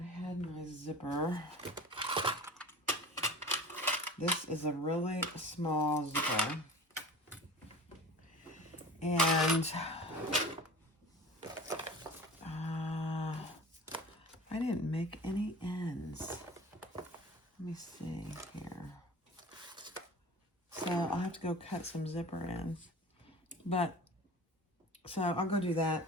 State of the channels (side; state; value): both; normal; correlation 0.39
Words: had my zipper. This is a really small zipper. And I didn't make any ends. Let me see here. So I'll have to go cut some zipper ends. But, so I'll go do that.